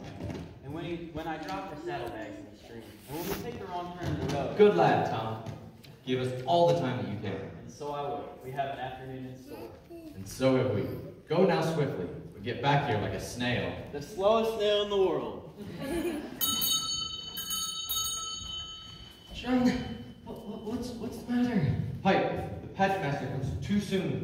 and when I drop her saddlebags in the stream, and when we take the wrong turn in the road. Good lad, Tom. Give us all the time that you can. And so I will. We have an afternoon in store. And so have we. Go now swiftly. We get back here like a snail. The slowest snail in the world. John, what's the matter? Pipe, the pageant master comes too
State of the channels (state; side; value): identical; both; correlation 1.00